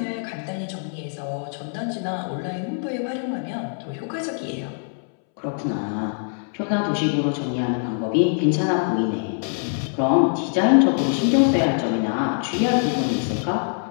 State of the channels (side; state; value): right; silent; 63 dB below the other